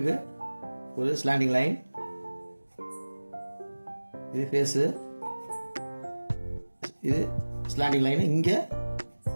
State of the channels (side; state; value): both; inverted; correlation -1.00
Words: ஒரு ஸ்லாண்டிங் லைன், இது ஃபேஸு, இது ஸ்லாண்டிங் லைனு. இங்கே